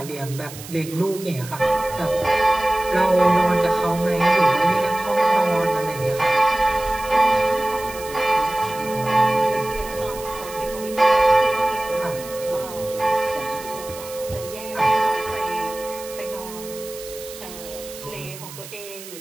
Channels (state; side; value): noise; right; hiss, 14 dB below the sound